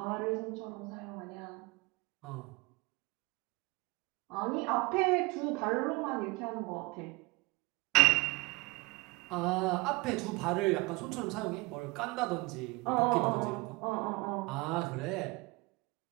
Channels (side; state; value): left; quieter; 24.9 dB